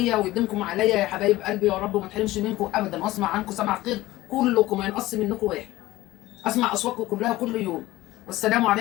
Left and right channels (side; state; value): right; quieter; 17.3 dB